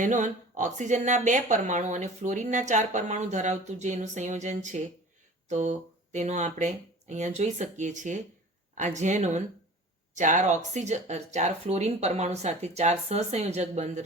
ઓક્સિજનના 2 પરમાણુ અને ફ્લોરિનના 4 પરમાણુ ધરાવતું જે એનું સંયોજન છે, તો તેનો આપણે અહીંયા જોઈ શકીએ છીએ. આ ઝેનોન 4 ફ્લોરિન પરમાણુ સાથે 4 સહસંયોજક બંધ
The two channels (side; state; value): both; normal; correlation 0.42